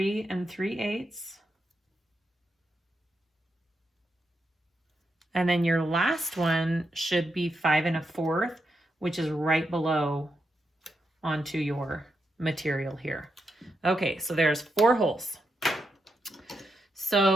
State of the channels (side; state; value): both; normal; correlation 0.84